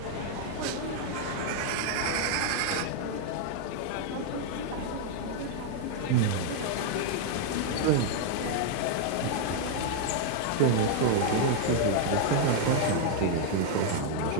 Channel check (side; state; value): both; different; correlation 0.00